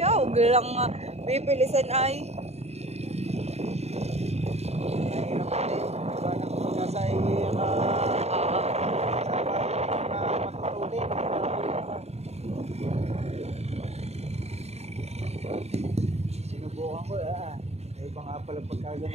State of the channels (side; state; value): left; late; 0.31 ms